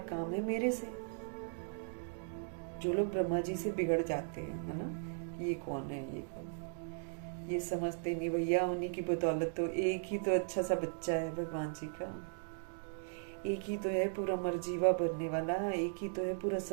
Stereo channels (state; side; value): silent; left; digital silence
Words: काम है मेरे से। जो लोग ब्रह्मा जी से बिगड़ जाते हैं, है ना, ये कौन है, ये कौन, ये समझते नहीं भैया, उन्हीं की बदौलत तो एक ही तो अच्छा सा बच्चा है भगवान जी का, एक ही तो है पूरा मरजीवा बनने वाला, एक ही तो है पूरा